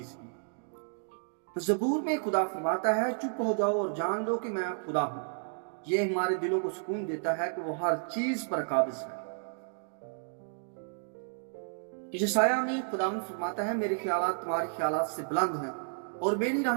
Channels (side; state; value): left; silent; digital silence